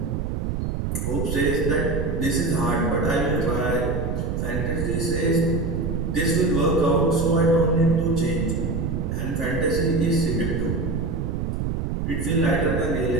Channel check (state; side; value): noise; right; rumble, 1 dB below the sound